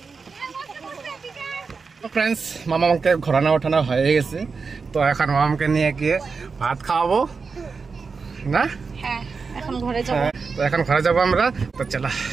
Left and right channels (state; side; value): quieter; left; 4.9 dB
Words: ফ্রেন্ডস, মামাকে ঘোরানো ওঠানো হয়ে গেছে। তো এখন মামাকে নিয়ে গিয়ে ভাত খাওয়াবো না। হ্যাঁ, এখন ঘরে যাবো। তো এখন ঘরে যাবো আমরা। তো চলো,